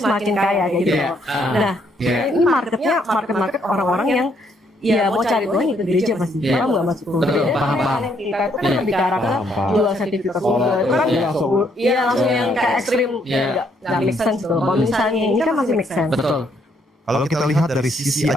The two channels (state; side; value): normal; both; correlation 0.71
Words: semakin kaya kayak gitu. Iya. Nah, ini marketnya market orang-orang yang ya mau cari Tuhan itu gereja pasti. Iya. Orang nggak masuk Betul, gereja. paham. Kita itu kan lebih ke arah ke jual sertifikat surga. Itu kan iya langsung yang kayak ekstrim. Iya. Nggak make sense tuh. Kalau misalnya ini kan masih make sense. Betul. Kalau kita lihat dari sisi